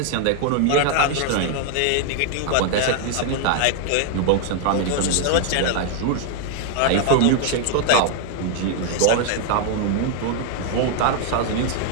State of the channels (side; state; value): both; different; correlation 0.00